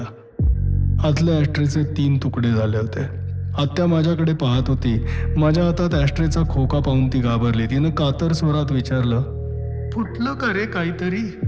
आतल्या ॲस्ट्रेचे 3 तुकडे झाले होते. आत्या माझ्याकडे पाहत होती. माझ्या हातात ॲस्ट्रेचा खोका पाहून ती घाबरली. तिनं कातर स्वरात विचारलं, फुटलं का रे काहीतरी?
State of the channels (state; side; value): identical; both; correlation 1.00